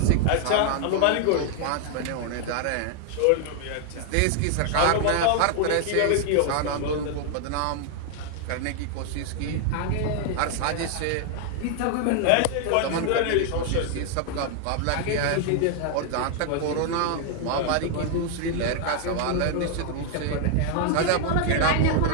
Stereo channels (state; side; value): different; both; correlation 0.00